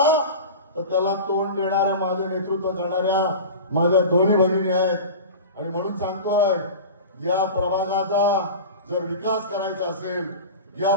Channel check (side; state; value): both; inverted; correlation -0.32